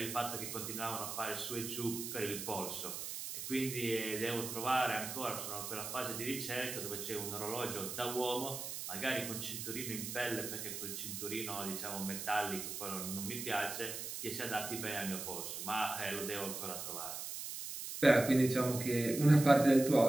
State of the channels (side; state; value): right; noise; hiss, 6 dB below the sound